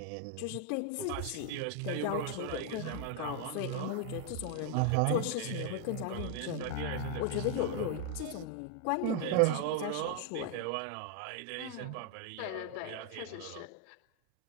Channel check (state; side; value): different; both; correlation 0.00